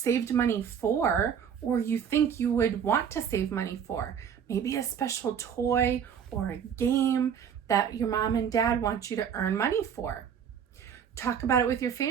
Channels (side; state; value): left; quieter; 7.9 dB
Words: money for or you think you would want to save money for? Maybe a special toy or a game that your mom and dad want you to earn money for. Talk about it with your